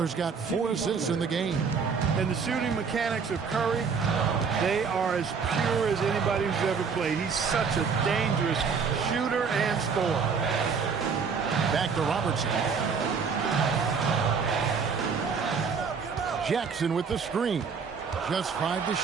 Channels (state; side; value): quieter; left; 5.7 dB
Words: got 4 assists in the game. And the shooting mechanics of Curry, they are as pure as anybody who's ever played. He's such a dangerous shooter and scorer. Back to Robertson. Jackson with the screen. Just 5 to